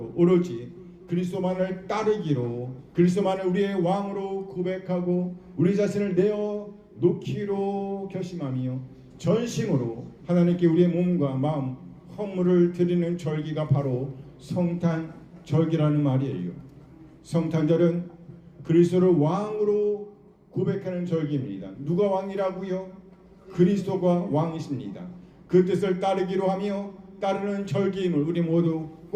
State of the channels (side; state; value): both; identical; correlation 1.00